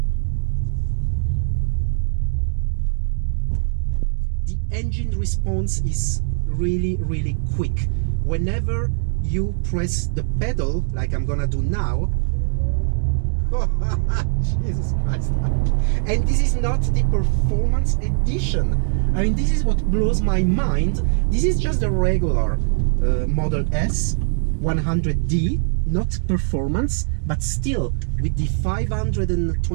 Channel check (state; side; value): silent; left; digital silence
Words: The engine response is really quick. Whenever you press the pedal, like I'm gonna do now, Jesus Christ. And this is not the performance edition. I mean, this is what blows my mind. This is just a regular Model S 100D, not performance, but still with the